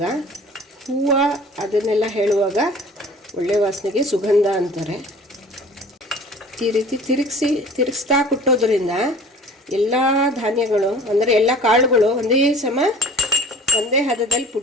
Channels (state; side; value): normal; both; correlation 0.46